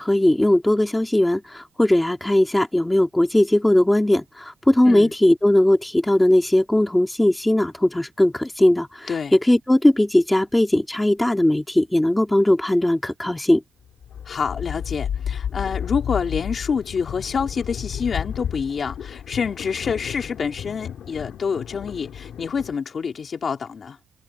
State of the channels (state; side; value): normal; both; correlation 0.98